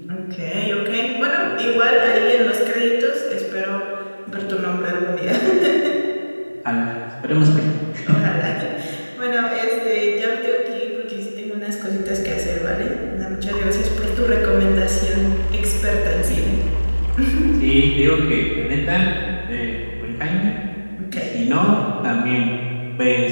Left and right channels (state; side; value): inverted; both; correlation -1.00